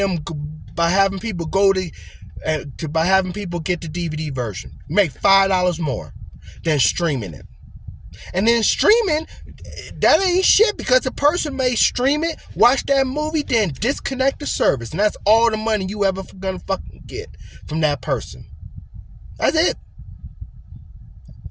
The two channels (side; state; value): both; identical; correlation 1.00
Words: by having people get the DVD version. You make $5 more than streaming it. And then streaming, that ain't shit, because the person may stream it, watch that movie, then disconnect the service. And that's all the money you ever gonna fucking get from that person. That's it.